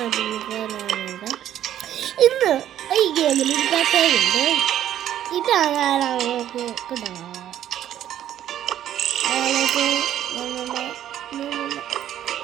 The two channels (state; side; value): quieter; left; 11.4 dB